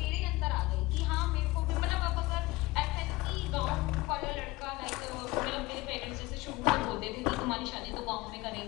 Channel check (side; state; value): right; quieter; 20.9 dB